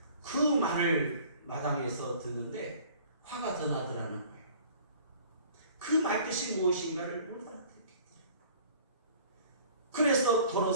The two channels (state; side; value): inverted; both; correlation -0.50